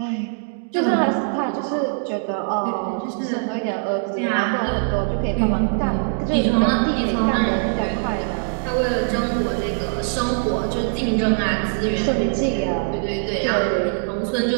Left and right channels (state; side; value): silent; left; digital silence